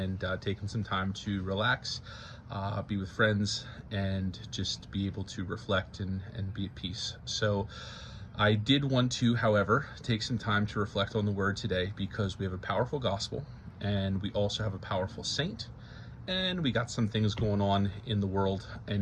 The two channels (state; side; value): identical; both; correlation 1.00